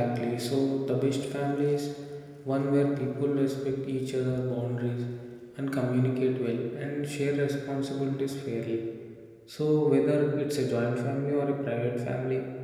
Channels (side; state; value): both; identical; correlation 1.00